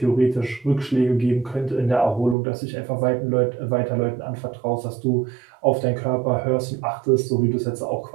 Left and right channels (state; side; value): drops out; left; at 2.4 s